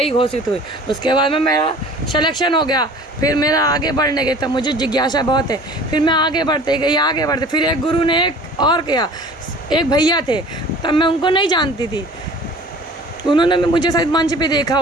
घोषित हुई। उसके बाद में मेरा सिलेक्शन हो गया। फिर मेरा आगे बढ़ने गई, तब मुझे जिज्ञासा बहुत है। फिर मैं आगे बढ़ते गई। फिर एक गुरु ने एक और किया, एक भैया थे, तब मैं उनको नहीं जानती थी, उन्होंने मुझे शायद मंच पे देखा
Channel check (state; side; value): normal; both; correlation 0.45